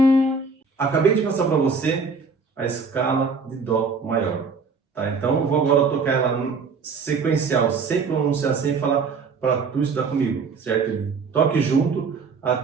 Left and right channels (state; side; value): quieter; left; 4.8 dB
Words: Acabei de passar para você a escala de Dó maior, tá? Então eu vou agora tocar ela sequencial, sem pronunciar, sem falar, para tu estudar comigo, certo? Toque junto